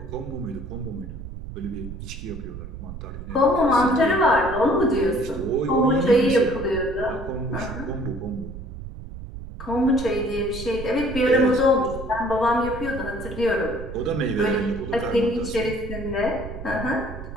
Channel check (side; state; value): right; noise; rumble, 10 dB below the sound